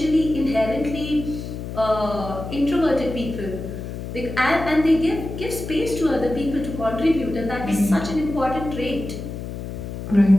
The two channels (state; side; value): noise; left; hum, 8 dB below the sound